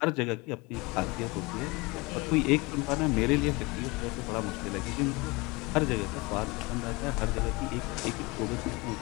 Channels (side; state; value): right; quieter; 25.0 dB